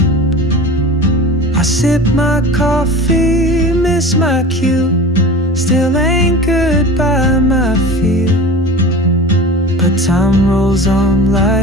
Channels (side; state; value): both; normal; correlation 0.35